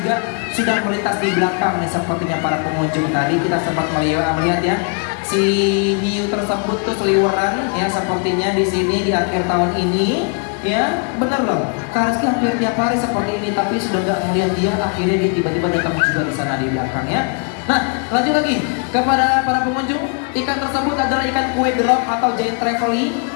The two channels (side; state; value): right; quieter; 38.8 dB